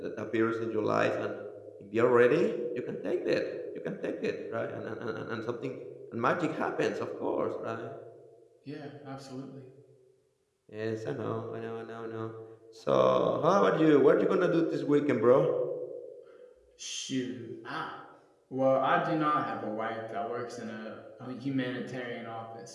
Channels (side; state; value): both; identical; correlation 1.00